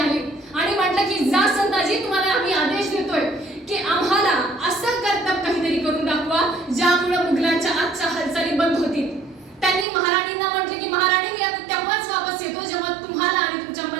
आणि म्हटलं की जा संताजी, तुम्हाला आम्ही आदेश देतोय की आम्हाला असं कर्तव्य काहीतरी करून दाखवा ज्यामुळे मुघलांच्या आजच्या हालचाली बंद होतील. त्यांनी महाराणींना म्हटले की महाराणी मी आता तेव्हाच वापस येतो जेव्हा तुम्हाला आणि तुमच्या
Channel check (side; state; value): left; drops out; at 9.9 s